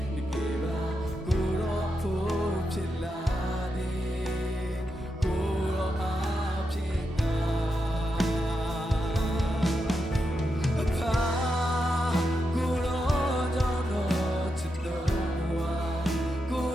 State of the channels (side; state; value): both; normal; correlation 0.86